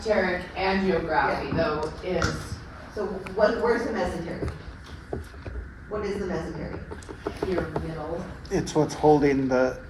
angiography though is, So where's the mesentery? What is the mesentery? your middle. It's what's holding the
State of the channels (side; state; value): both; identical; correlation 1.00